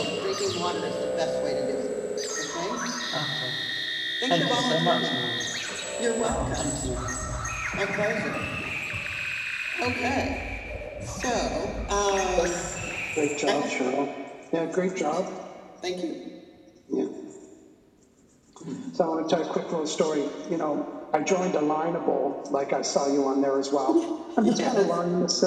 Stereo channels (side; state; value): both; identical; correlation 1.00